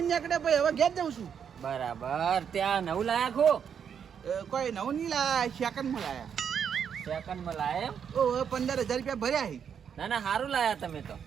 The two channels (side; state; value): left; quieter; 7.7 dB